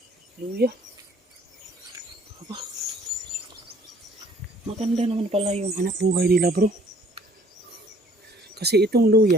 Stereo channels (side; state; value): both; normal; correlation 0.58